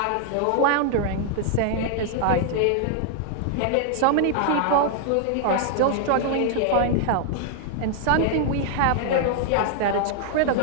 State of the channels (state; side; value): different; both; correlation 0.00